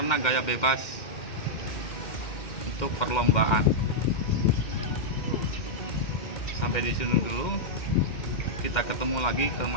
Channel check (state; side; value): late; right; 2.1 ms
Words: gaya bebas untuk perlombaan. Sampai di sini dulu. Kita ketemu lagi ke